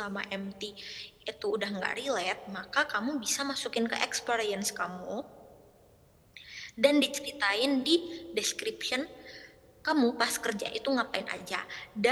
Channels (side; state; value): both; identical; correlation 1.00